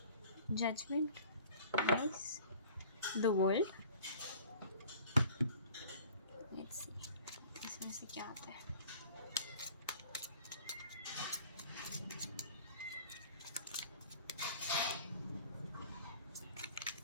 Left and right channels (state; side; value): inverted; both; correlation -0.47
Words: judgement, nice. The world, let's see इसमें से क्या आता है।